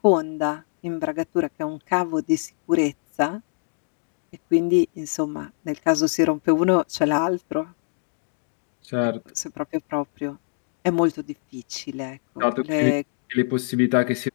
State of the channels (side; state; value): right; silent; digital silence